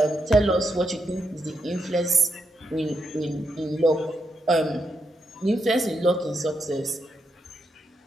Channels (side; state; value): both; normal; correlation 0.82